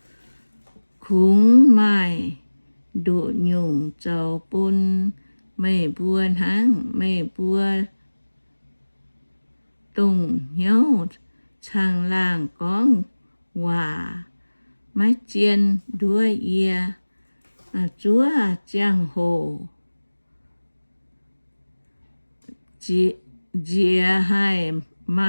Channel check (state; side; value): inverted; both; correlation -1.00